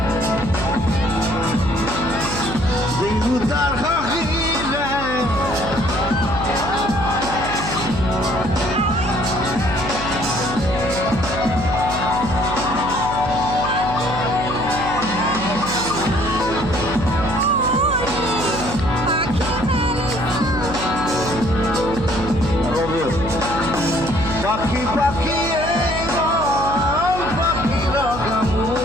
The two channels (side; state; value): right; noise; hum, 7 dB below the sound